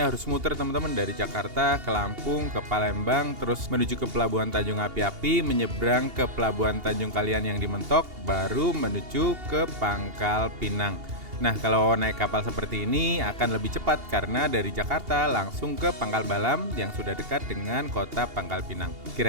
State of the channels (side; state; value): left; late; 2.8 ms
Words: harus muter teman-teman dari Jakarta ke Lampung, ke Palembang, terus menuju ke Pelabuhan Tanjung Api-Api, menyeberang ke Pelabuhan Tanjung Kalian yang di Mentok, baru menuju ke Pangkal Pinang. Nah, kalau naik kapal seperti ini akan lebih cepat karena dari Jakarta langsung ke Pangkal Balam yang sudah dekat dengan kota Pangkal Pinang.